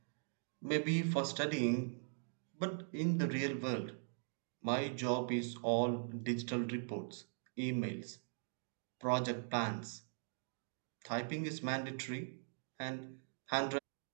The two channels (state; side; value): silent; left; digital silence